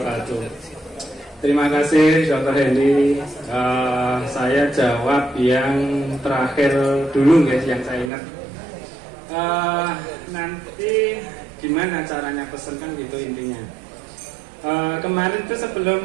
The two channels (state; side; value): drops out; left; at 8.1 s